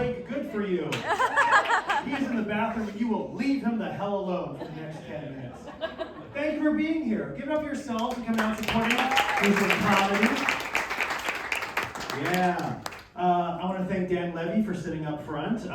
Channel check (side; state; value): both; identical; correlation 1.00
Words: good for you. He's in the bathroom and you will leave him the hell alone for the next 10 minutes. Thank you for being here. Give it up for yourselves and coming out supporting us. This is comedy. Yeah. I want to thank Dan Levy for sitting up front.